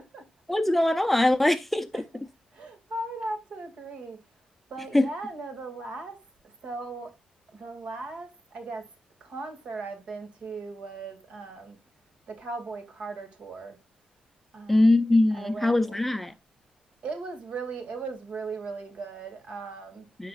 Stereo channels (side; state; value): both; normal; correlation 0.95